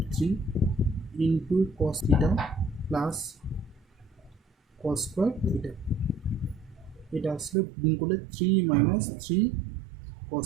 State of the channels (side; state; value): left; drops out; at 7.6 s